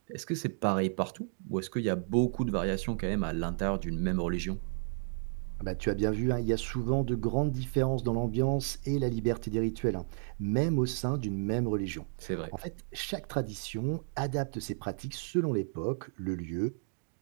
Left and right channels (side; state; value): left; silent; digital silence